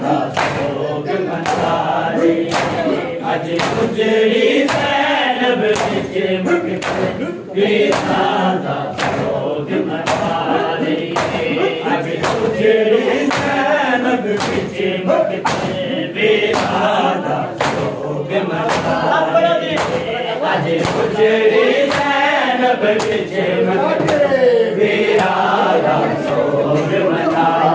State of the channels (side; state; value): both; identical; correlation 1.00